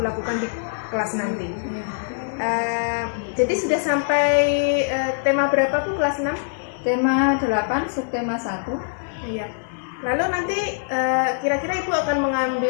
lakukan di kelas nanti. Jadi sudah sampai tema berapa Bu, kelas 6? Tema 8, subtema 1. Iya. Lalu nanti kira-kira Ibu akan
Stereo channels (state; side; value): silent; right; digital silence